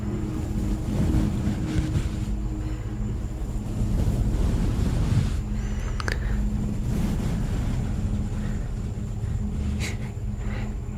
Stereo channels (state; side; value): identical; both; correlation 1.00